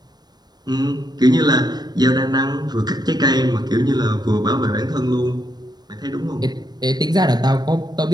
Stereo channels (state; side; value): late; left; 0.20 ms